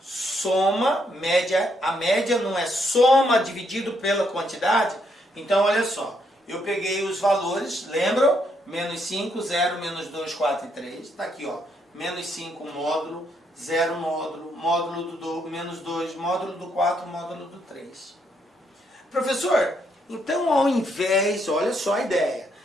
Soma, média. A média não é soma dividido pela quantidade? Então, olha só. Eu peguei os valores, lembram? Menos 5, 0, menos 2, 4 e 3. Está aqui, ó. Menos 5, módulo. 0, módulo. Módulo do menos 2, módulo do 4, módulo do 3. Professor, então ao invés, olha só a ideia.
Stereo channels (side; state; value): both; normal; correlation 0.74